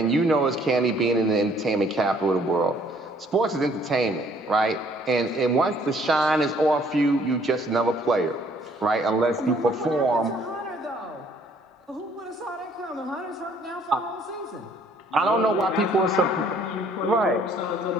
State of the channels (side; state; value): both; normal; correlation 0.61